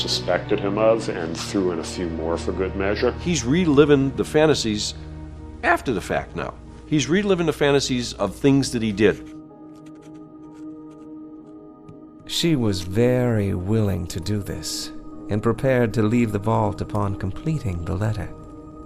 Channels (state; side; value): identical; both; correlation 1.00